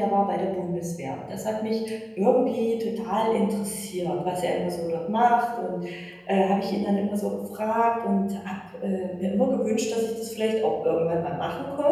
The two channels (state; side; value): identical; both; correlation 1.00